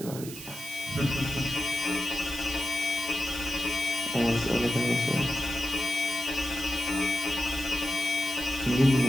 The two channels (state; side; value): noise; right; hiss, 12 dB below the sound